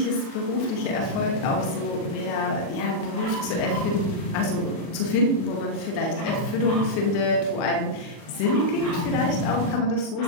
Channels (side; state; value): right; late; 37 ms